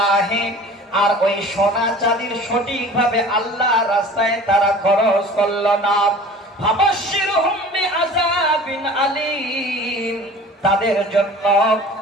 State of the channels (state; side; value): normal; both; correlation 0.43